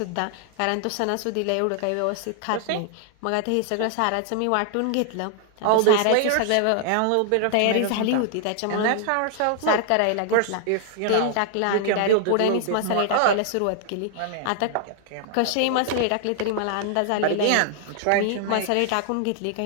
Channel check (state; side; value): different; both; correlation 0.00